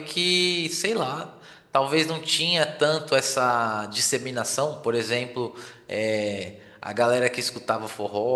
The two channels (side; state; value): both; identical; correlation 1.00